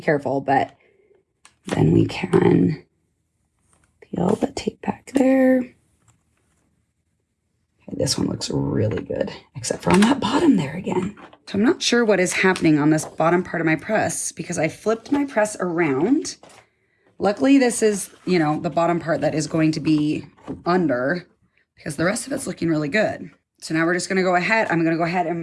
but then we can peel the tape back there. This one looks really good, except for on that bottom there again. So I'm not sure what is happening on this bottom part of my press because I flipped my press around. Luckily, this is, you know, the bottom part that is going to be under because the rest of it's looking really good. So now we're just gonna go ahead. I'm gonna go ahead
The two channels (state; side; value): identical; both; correlation 1.00